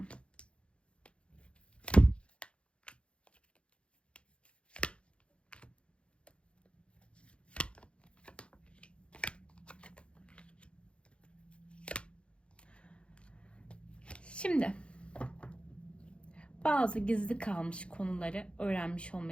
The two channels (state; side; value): late; right; 0.058 ms